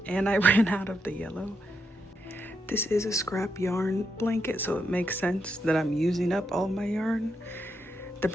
and I ran out of the yellow. This is a scrap yarn blanket, so it makes sense that I'm using up all my yarn. The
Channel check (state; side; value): normal; both; correlation 0.82